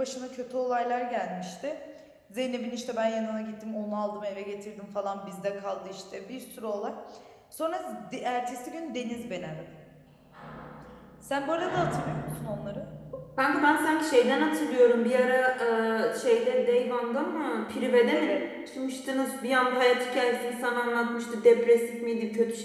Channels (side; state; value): both; identical; correlation 1.00